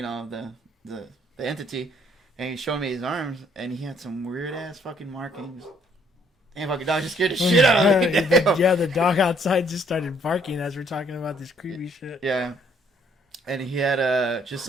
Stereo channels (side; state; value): both; normal; correlation 0.65